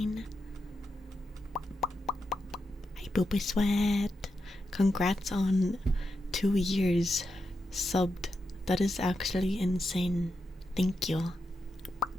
Hi Booba Sweat. Congrats on 2 years subbed. That is actually insane. Thank you.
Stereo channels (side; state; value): both; normal; correlation 0.86